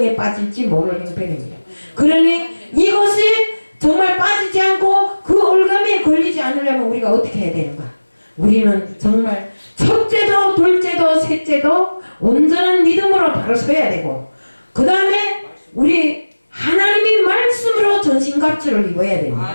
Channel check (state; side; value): inverted; both; correlation -1.00